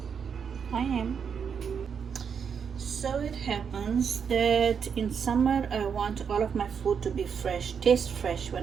I am. So it happens that in summer I want all of my food to be fresh, taste fresh.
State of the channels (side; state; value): left; quieter; 6.8 dB